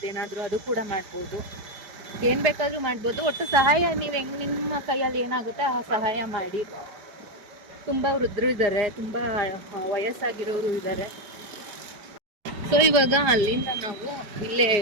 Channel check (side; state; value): left; late; 4.9 ms